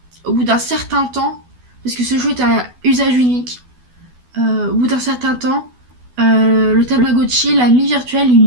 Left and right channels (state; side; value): late; left; 12 ms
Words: au bout d'un certain temps, parce que ce jeu est un usage unique, au bout d'un certain temps, le Tamagotchi, l'ami virtuel, il